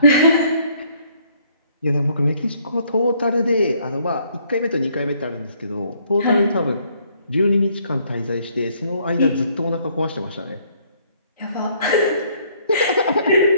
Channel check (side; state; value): both; inverted; correlation -0.65